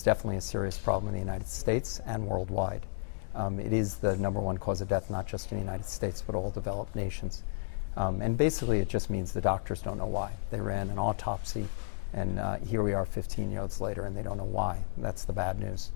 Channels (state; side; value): silent; right; digital silence